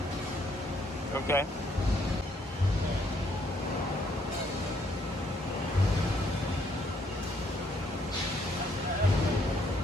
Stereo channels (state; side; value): normal; both; correlation 0.69